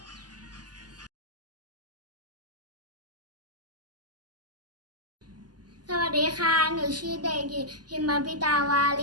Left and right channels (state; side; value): late; left; 0.69 ms